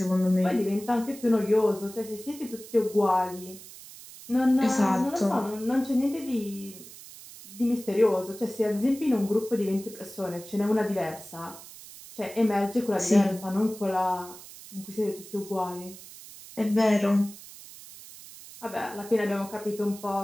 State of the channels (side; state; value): right; noise; hiss, 17 dB below the sound